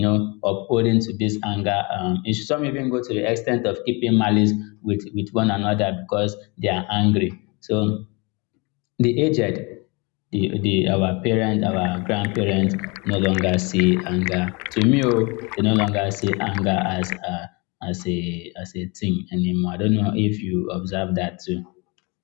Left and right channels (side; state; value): right; quieter; 28.8 dB